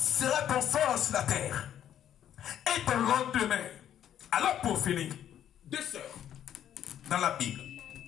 ton sort sur la terre? Et ton lendemain. Alors pour finir, deux sœurs dans la Bible,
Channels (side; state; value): right; quieter; 10.5 dB